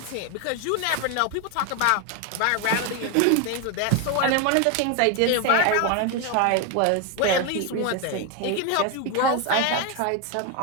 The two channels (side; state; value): both; different; correlation 0.01